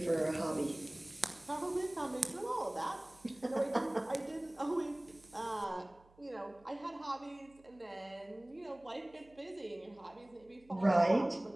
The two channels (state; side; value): noise; right; hum, 28 dB below the sound